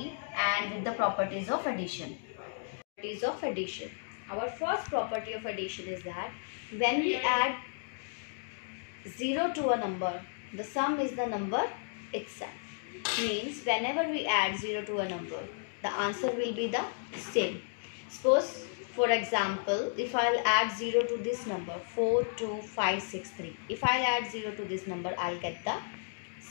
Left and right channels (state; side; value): silent; right; digital silence